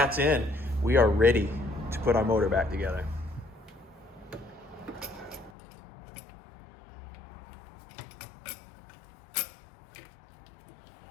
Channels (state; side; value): drops out; right; at 5.5 s